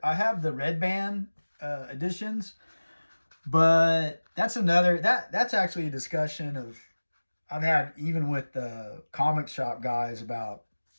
have the red band editions. But that's actually a discussion of I've had even with the comic shop guys about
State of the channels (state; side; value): inverted; both; correlation -1.00